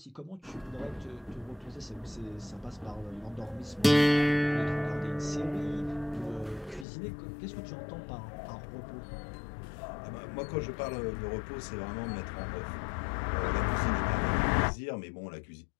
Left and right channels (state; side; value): drops out; right; at 6.9 s